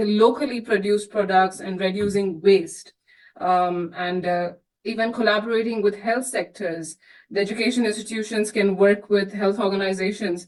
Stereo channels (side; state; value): both; identical; correlation 1.00